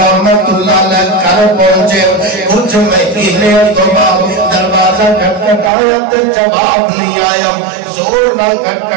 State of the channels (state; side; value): drops out; left; at 5.7 s